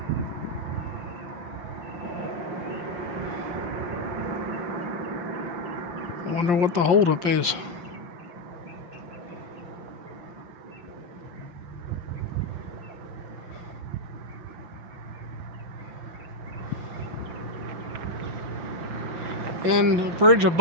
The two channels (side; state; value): left; late; 5.7 ms